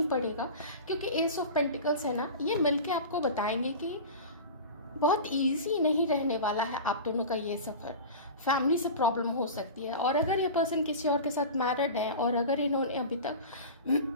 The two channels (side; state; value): both; inverted; correlation -0.31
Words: पड़ेगा, क्योंकि एस ऑफ पेंटिकल्स है ना, ये मिलके आपको बताएंगे कि बहुत इजी नहीं रहने वाला है आप दोनों का ये सफ़र। फैमिली से प्रॉब्लम हो सकती है, और अगर ये पर्सन किसी और के साथ मैरिड है और अगर इन्होंने अभी